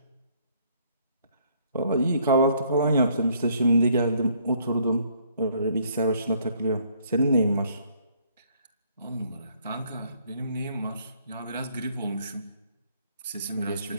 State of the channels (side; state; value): both; inverted; correlation -0.65